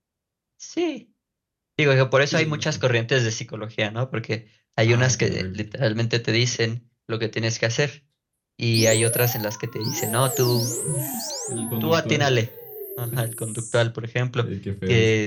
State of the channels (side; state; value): both; identical; correlation 1.00